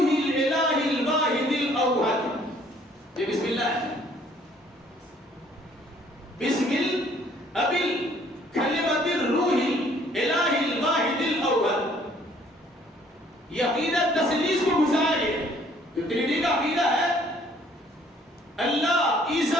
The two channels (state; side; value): normal; both; correlation 0.60